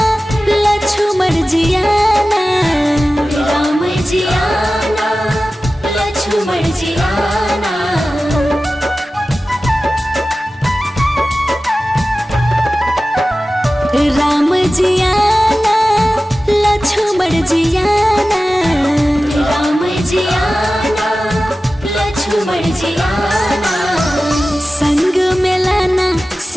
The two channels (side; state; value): both; normal; correlation 0.95